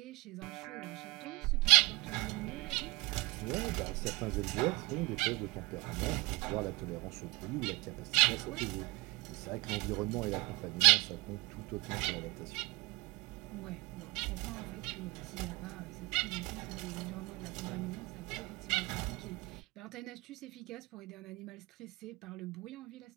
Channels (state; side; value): quieter; left; 23.9 dB